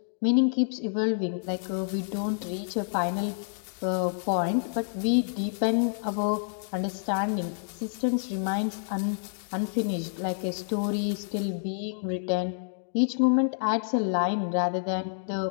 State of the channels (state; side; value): silent; right; digital silence